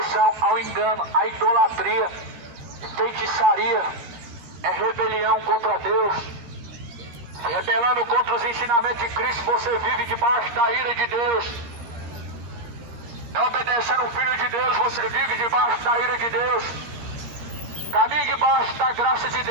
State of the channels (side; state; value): left; late; 14 ms